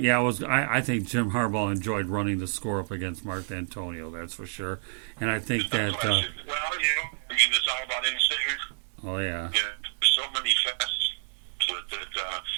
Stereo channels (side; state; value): left; silent; 59 dB below the other